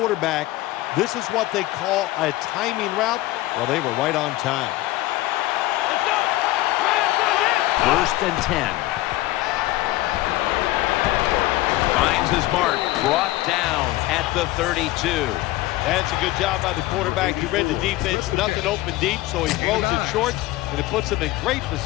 This is what they call a timing route. Well, they were right on time. 1st and 10. Finds his mark. Brought down at the 32. That's a good job by the quarterback. He read the defense. Nothing open deep, so he throws it short, and it puts him in great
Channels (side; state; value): right; quieter; 17.5 dB